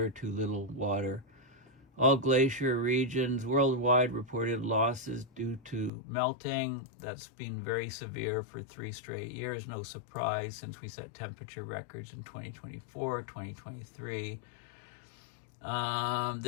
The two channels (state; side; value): drops out; right; at 5.9 s